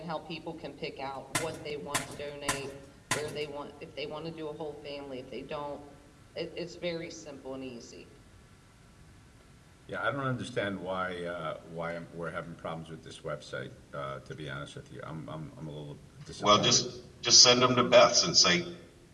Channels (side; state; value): both; identical; correlation 1.00